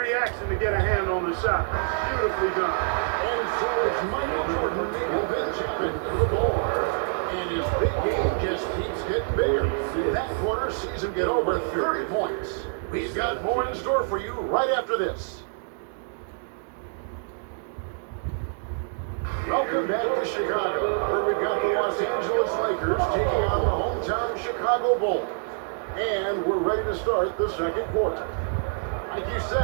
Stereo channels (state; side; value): silent; left; digital silence